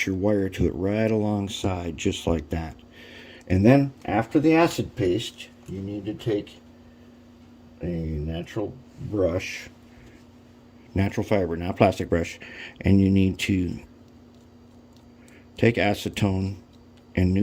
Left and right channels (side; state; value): both; identical; correlation 1.00